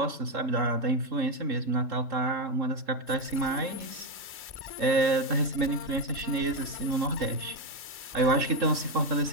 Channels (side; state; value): left; late; 3.7 ms